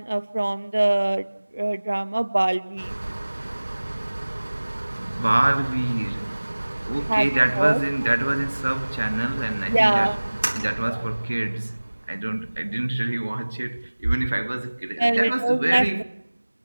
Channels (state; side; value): inverted; both; correlation -1.00